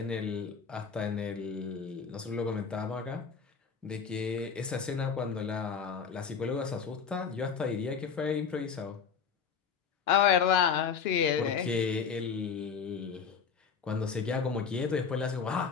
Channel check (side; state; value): right; quieter; 6.4 dB